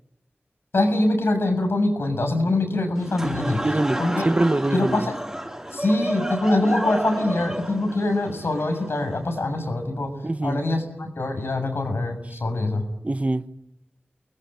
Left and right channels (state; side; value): normal; both; correlation 0.91